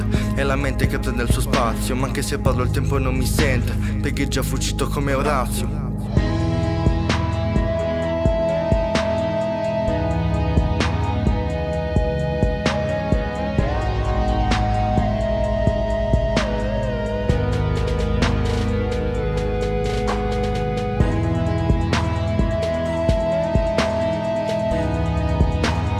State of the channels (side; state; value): both; identical; correlation 1.00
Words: è la mente che prende il suo spazio. Ma anche se parlo il tempo non mi sente, perché è già fuggito come Orazio.